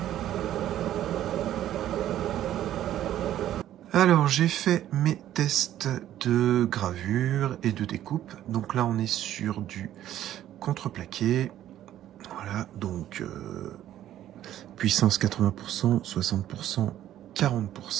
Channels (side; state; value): left; quieter; 12.2 dB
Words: Alors j'ai fait mes tests de gravure et de découpe. Donc là on est sur du contreplaqué. Voilà, donc puissance 80%, 60%,